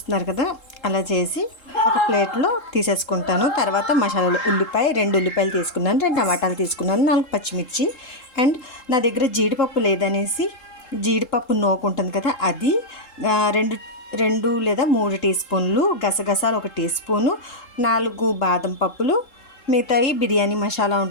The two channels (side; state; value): right; late; 3.7 ms